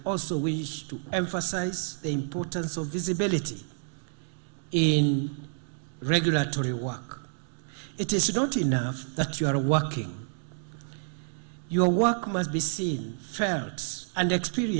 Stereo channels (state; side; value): silent; left; digital silence